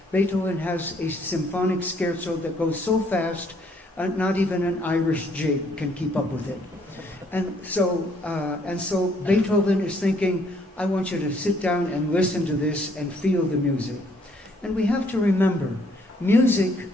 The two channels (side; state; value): both; normal; correlation 0.66